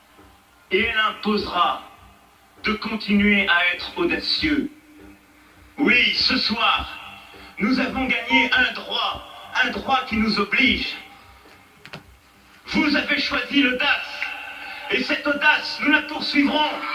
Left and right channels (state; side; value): identical; both; correlation 1.00